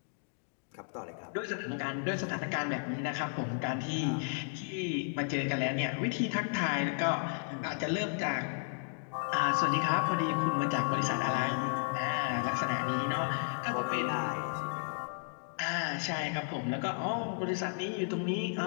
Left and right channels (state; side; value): silent; right; 55 dB below the other